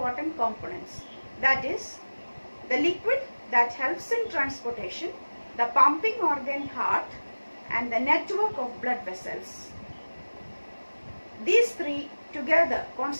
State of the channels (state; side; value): inverted; both; correlation -1.00